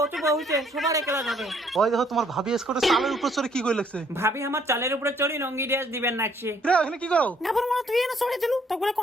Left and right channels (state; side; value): normal; both; correlation 0.64